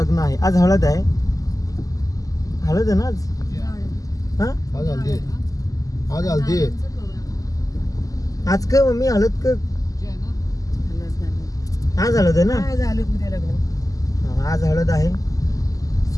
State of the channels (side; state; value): right; late; 0.17 ms